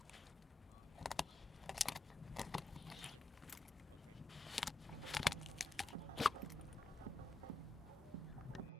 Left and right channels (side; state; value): right; quieter; 3.0 dB